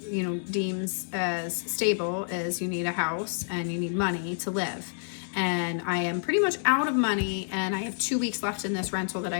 deems as stable, is you need a house and you need money to live. And I am pretty much out of money, and I have 2 weeks left in this rental that I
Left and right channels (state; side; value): silent; right; digital silence